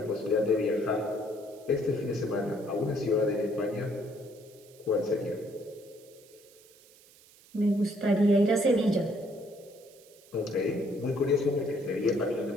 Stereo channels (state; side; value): noise; right; hiss, 25 dB below the sound